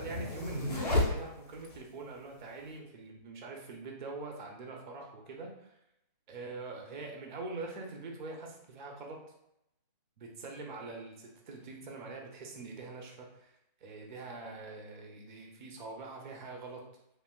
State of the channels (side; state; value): both; inverted; correlation -0.35